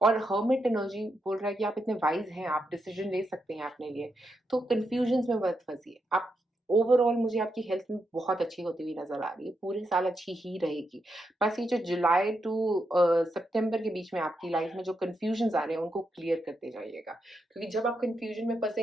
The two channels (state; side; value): normal; both; correlation 0.84